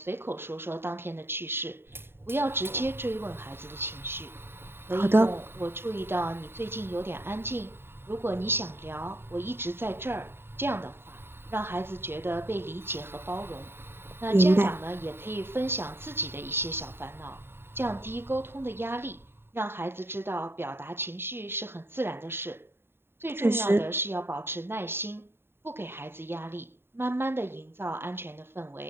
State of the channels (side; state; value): left; late; 0.11 ms